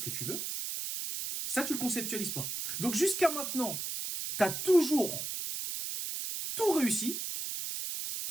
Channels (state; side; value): noise; right; hiss, 4 dB below the sound